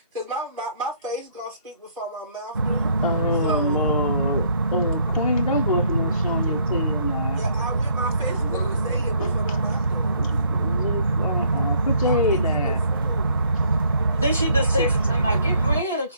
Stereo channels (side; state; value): both; inverted; correlation -0.65